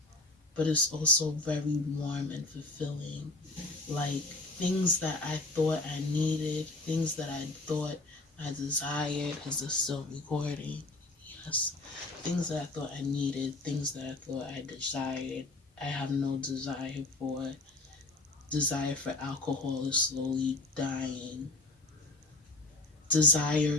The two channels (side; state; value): right; quieter; 3.1 dB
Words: but it's also very warm and fulfilling. Like, things that I thought I needed, things that I thought I desired. Is this still recording? Yes. Things that I thought I needed, things that I thought I desired, I have no desire for. Desire for alcohol is slowly dying.